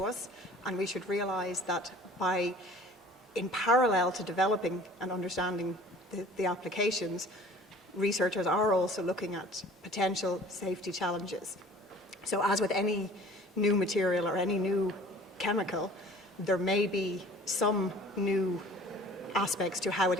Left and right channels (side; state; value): both; normal; correlation 0.48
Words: us, and we should realise that in parallel to developing and understanding the applications, researchers are also looking at potential safety challenges. So as with any new material or any new chemical, there may be some new aspects to how it